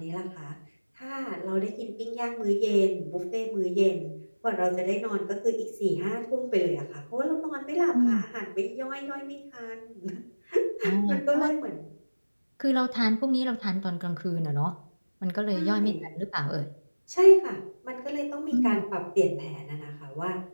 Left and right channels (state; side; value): inverted; both; correlation -1.00